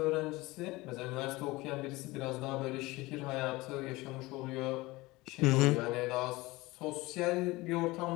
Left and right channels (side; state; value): right; quieter; 21.0 dB